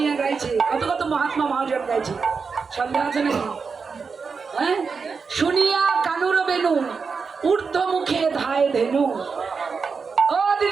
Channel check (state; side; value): quieter; left; 5.2 dB